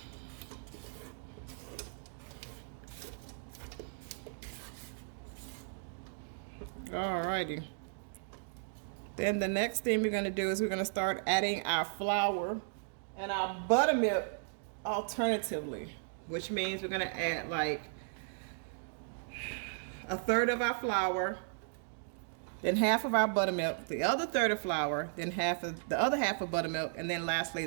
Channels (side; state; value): left; silent; digital silence